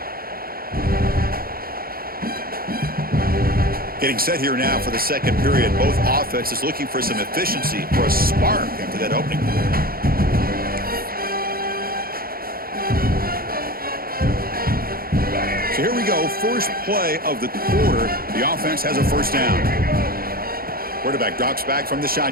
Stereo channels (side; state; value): left; late; 0.43 ms